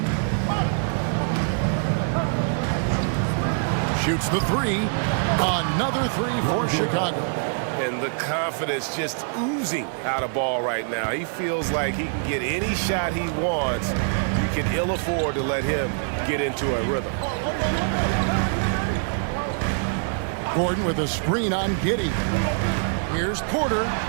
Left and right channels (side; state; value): left; silent; 62 dB below the other